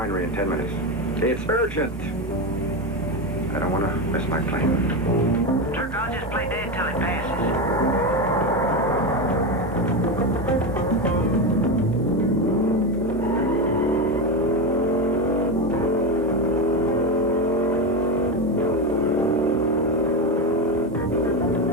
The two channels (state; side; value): noise; right; hum, 14 dB below the sound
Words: in 10 minutes. It's urgent. I don't want to miss my plane. Turk, I'll just play dead till it passes.